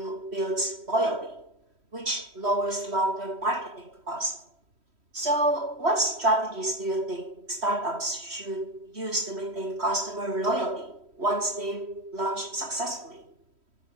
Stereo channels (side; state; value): left; late; 3.1 ms